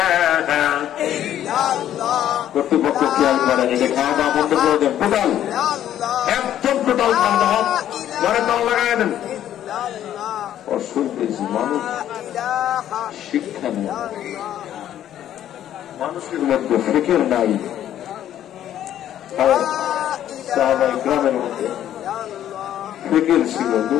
কর্তৃপক্ষ খেয়াল করে এটা খাওয়া দাওয়া বন্ধ করে দেন, টোটাল একদম টোটাল খাওয়া দাওয়া ঘরে তাল লাগাই দেন। অসুবিধা মানুষ শিক্ষা নেই, মানুষের মধ্যে ফিকির নাই। গ্রামের মধ্যে ফিকির ছিল,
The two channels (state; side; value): quieter; right; 11.3 dB